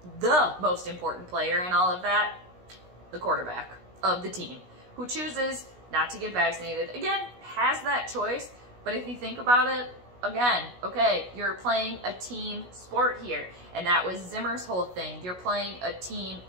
the most important player in all of that? The quarterback of the team, who chooses not to get vaccinated. Again, has that choice, but if you think about it, again, okay, you're playing a team sport here, and that was Zimmer's whole thing. You're playing a team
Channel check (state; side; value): late; left; 16 ms